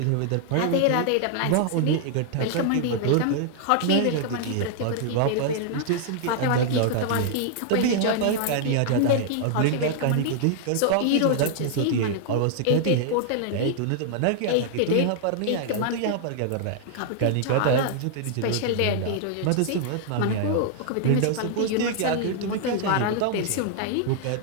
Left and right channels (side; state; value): both; different; correlation -0.01